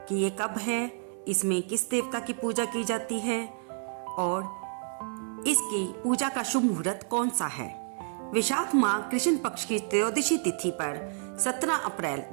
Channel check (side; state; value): left; silent; 57 dB below the other